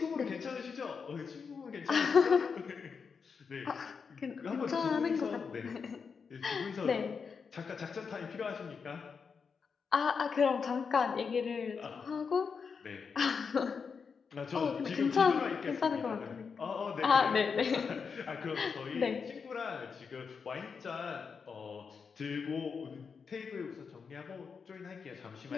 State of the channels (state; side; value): quieter; right; 5.7 dB